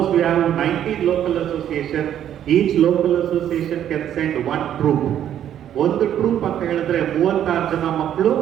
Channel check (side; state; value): left; quieter; 10.5 dB